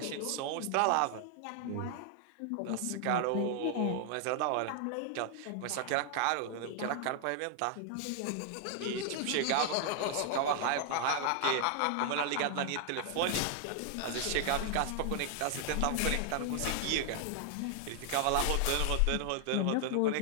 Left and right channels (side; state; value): both; different; correlation 0.00